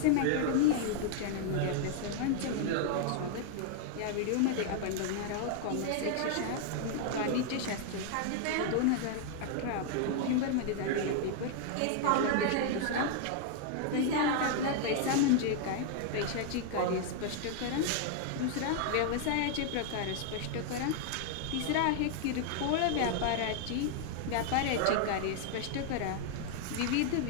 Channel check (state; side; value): different; both; correlation 0.00